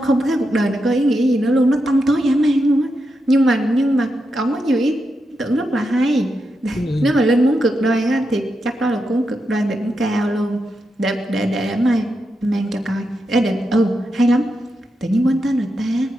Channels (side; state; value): both; normal; correlation 0.86